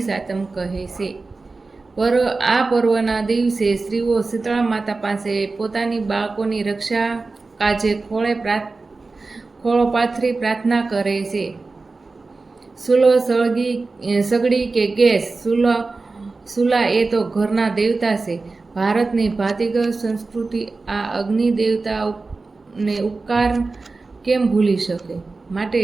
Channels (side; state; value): left; quieter; 3.8 dB